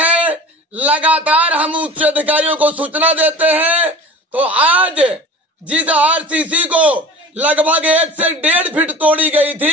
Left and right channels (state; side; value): normal; both; correlation 0.39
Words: लगातार हम उच्च अधिकारियों को सूचना देते हैं, तो आज जिस आरसीसी को लगभग 1 से 1.5 फीट तोड़ी गई